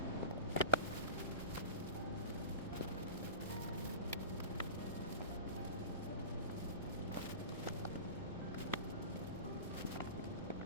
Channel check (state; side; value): inverted; both; correlation -0.31